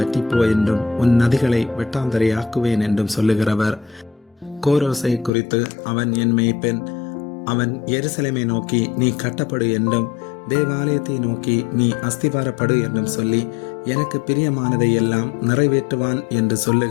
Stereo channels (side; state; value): right; drops out; at 5.3 s